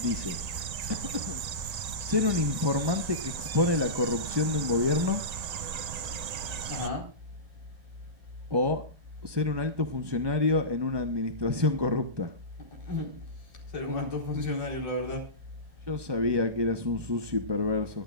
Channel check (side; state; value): left; late; 1.9 ms